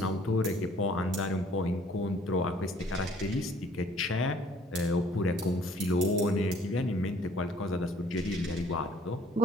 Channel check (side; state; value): both; normal; correlation 0.57